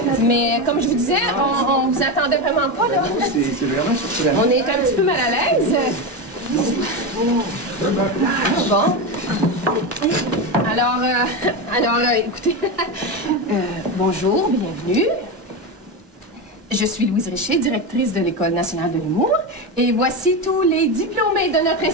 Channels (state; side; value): normal; both; correlation 0.16